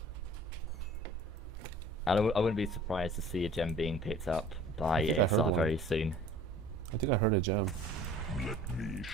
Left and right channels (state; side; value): normal; both; correlation 0.48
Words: I wouldn't be surprised to see a gem being picked up by ASR very soon. I think I heard a gem. Let me